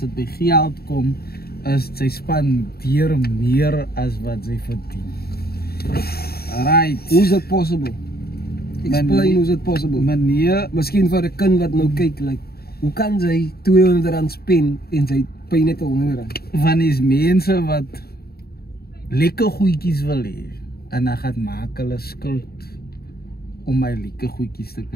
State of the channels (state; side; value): late; right; 0.45 ms